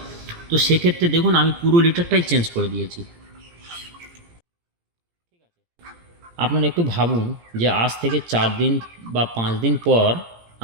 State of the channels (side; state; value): left; late; 17 ms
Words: তো সেক্ষেত্রে দেখুন আমি পুরো লিটারটাই চেঞ্জ করে দিয়েছি। আপনারা একটু ভাবুন যে আজ থেকে 4 দিন বা 5 দিন পর